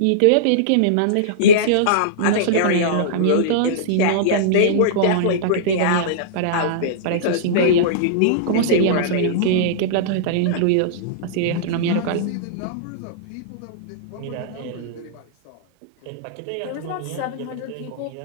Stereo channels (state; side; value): different; both; correlation -0.03